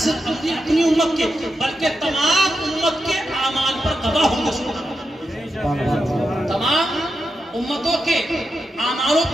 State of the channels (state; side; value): normal; both; correlation 0.87